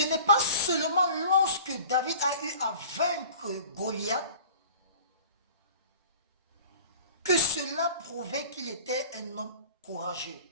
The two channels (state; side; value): inverted; both; correlation -0.44